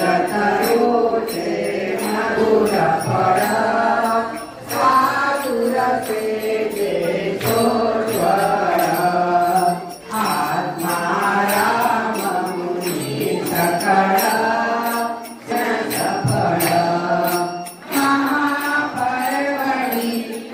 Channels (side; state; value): both; identical; correlation 1.00